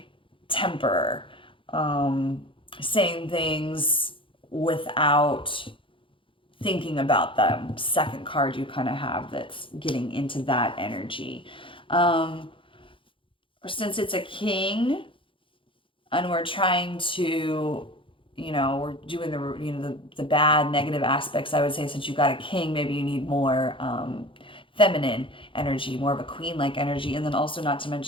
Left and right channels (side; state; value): right; late; 0.25 ms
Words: temper, saying things without thinking about them. Second card you kind of have that's getting into that energy. Since it's a king and we're trying to, we're doing the bad negative aspects, I would say since you got a king, maybe you need more feminine energy, more of a queen like energy. And then also, not to